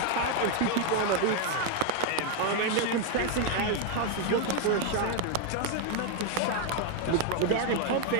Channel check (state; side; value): different; both; correlation 0.01